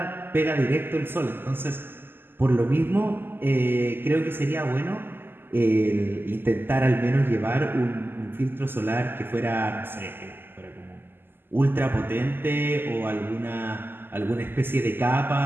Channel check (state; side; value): late; left; 0.099 ms